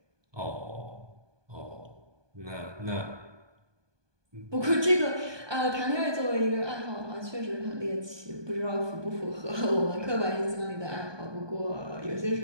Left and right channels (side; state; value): left; late; 1.2 ms